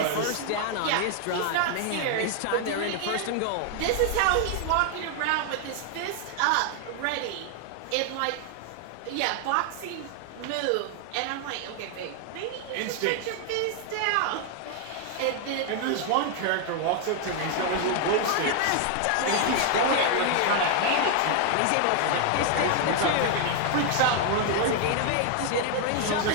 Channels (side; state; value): both; different; correlation 0.00